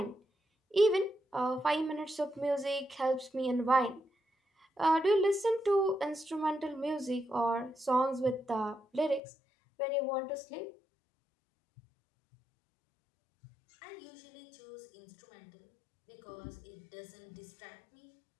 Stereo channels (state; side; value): drops out; right; at 9.2 s